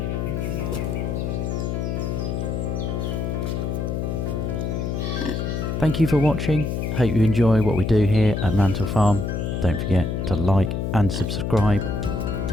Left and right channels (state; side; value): noise; left; hum, 1 dB below the sound